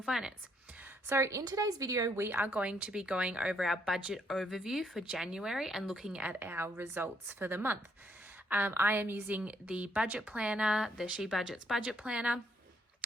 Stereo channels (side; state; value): both; normal; correlation 0.71